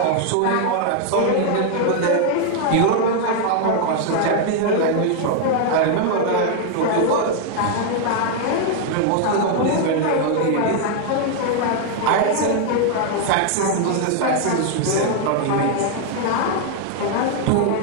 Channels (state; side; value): different; both; correlation 0.00